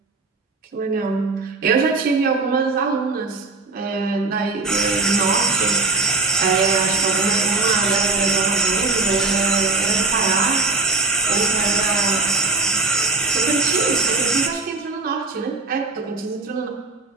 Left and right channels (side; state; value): left; quieter; 3.6 dB